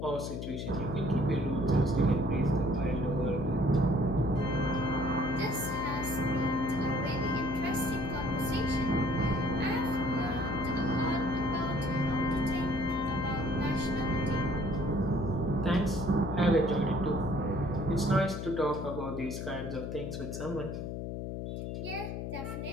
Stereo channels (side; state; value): left; noise; hum, 5 dB below the sound